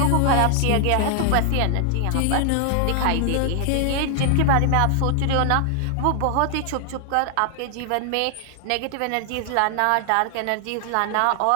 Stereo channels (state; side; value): different; both; correlation 0.00